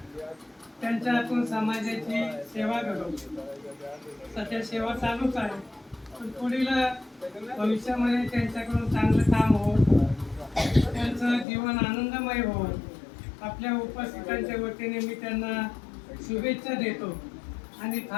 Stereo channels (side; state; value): right; drops out; at 11.5 s